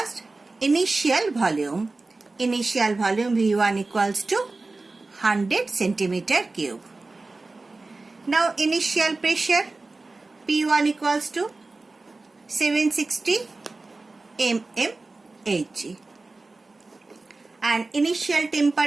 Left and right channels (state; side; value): quieter; left; 3.4 dB